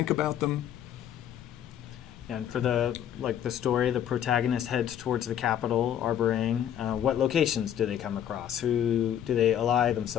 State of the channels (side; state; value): right; quieter; 10.1 dB